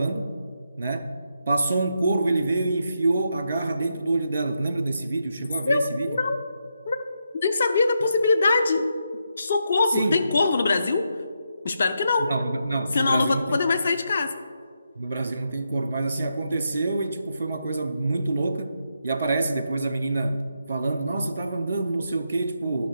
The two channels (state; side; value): inverted; both; correlation -0.83